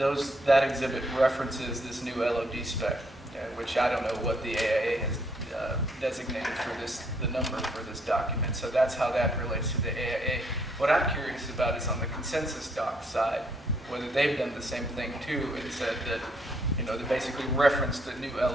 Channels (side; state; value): both; normal; correlation 0.70